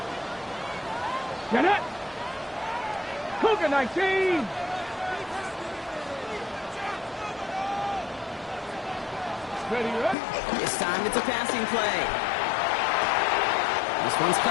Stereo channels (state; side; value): drops out; right; at 10.2 s